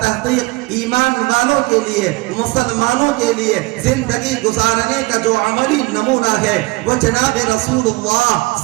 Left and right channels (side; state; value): left; quieter; 22.6 dB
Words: تحقیق ایمان والوں کے لیے، مسلمانوں کے لیے زندگی گزارنے کا جو عملی نمونہ ہے وہ جناب رسول اللہ